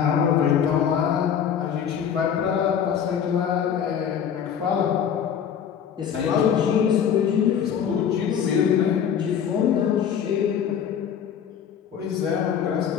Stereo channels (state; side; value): quieter; right; 8.3 dB